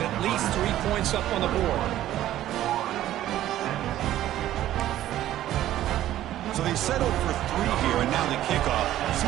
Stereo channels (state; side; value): quieter; left; 13.3 dB